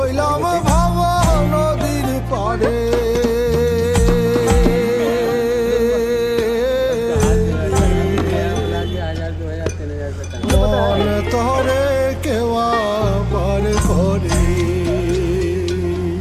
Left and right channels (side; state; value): both; identical; correlation 1.00